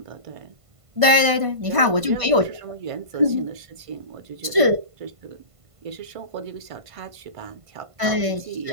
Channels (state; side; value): late; left; 1.5 ms